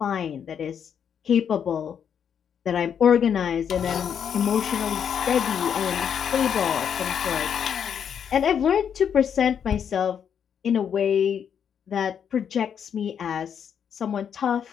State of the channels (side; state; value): right; quieter; 8.0 dB